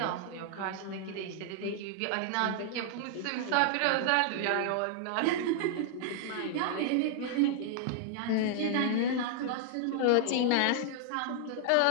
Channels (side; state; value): both; different; correlation -0.01